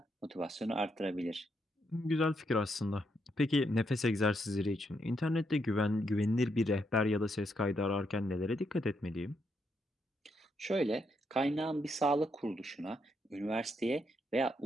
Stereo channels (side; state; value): both; normal; correlation 0.78